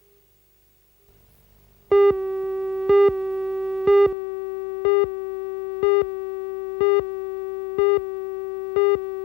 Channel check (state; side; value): drops out; right; at 4.2 s